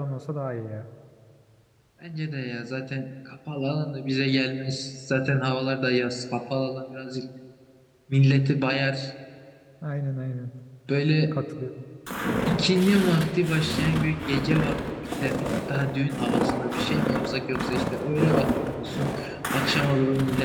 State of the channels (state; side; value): identical; both; correlation 1.00